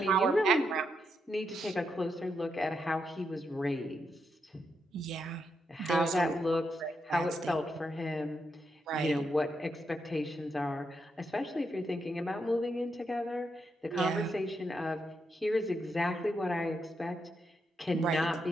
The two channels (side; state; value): both; normal; correlation 0.82